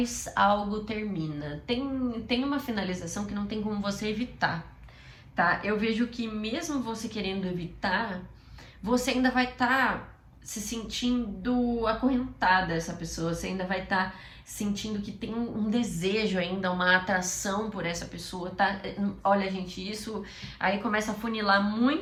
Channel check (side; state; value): both; identical; correlation 1.00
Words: algo termina. Tem uma finalização que não tem como você evitar, tá? Eu vejo que mesmo você querendo evitar, você ainda vai estar se sentindo acorrentada a essa pessoa, você ainda vai estar sentindo que tem um desejo ainda, uma atração por essa pessoa, tá? Olha, gente, isso aí começa a funilar